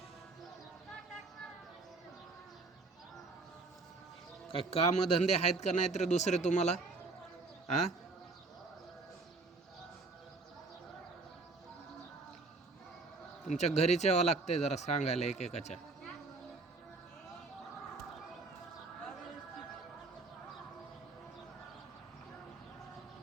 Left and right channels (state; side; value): quieter; left; 3.7 dB